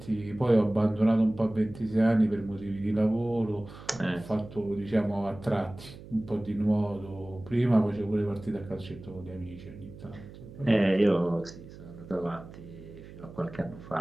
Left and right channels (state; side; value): noise; right; hum, 16 dB below the sound